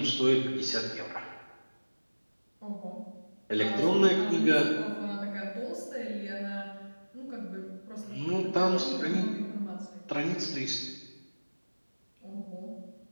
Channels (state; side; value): inverted; both; correlation -1.00